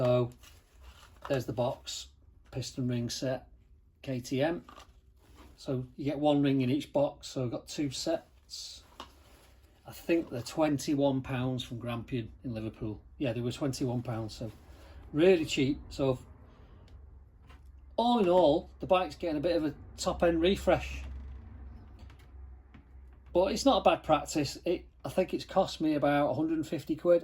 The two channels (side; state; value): both; identical; correlation 1.00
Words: there's the box, piston ring set, KTM. So you get one ring in each box, so I've got two sets. I think they're £21 from Grampian in Liverpool. Yeah, they were £21, so really cheap. So all in all, the bike's getting a bit of a top end refresh. But it's not a bad practice. I think it's cost me about 150